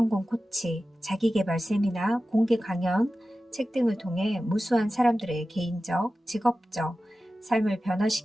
코치, 자기계발 세미나, 공개 강연, 책 등을 통해 무수한 사람들의 개인적, 직업적 삶을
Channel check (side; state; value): both; normal; correlation 0.94